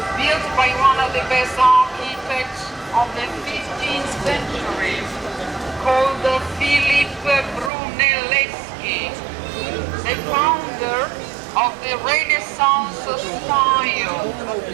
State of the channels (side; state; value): left; drops out; at 7.7 s